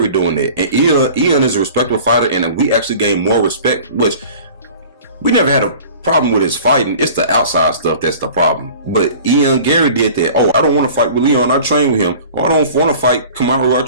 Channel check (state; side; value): inverted; both; correlation -0.44